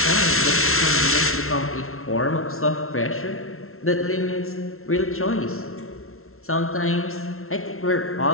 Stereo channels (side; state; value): right; late; 0.62 ms